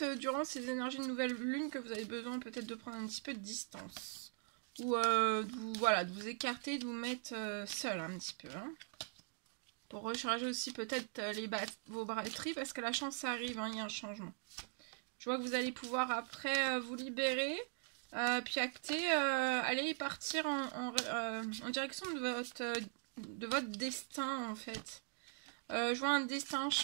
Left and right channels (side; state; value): left; silent; 50 dB below the other